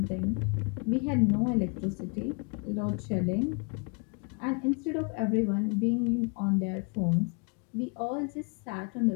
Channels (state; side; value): quieter; right; 35.3 dB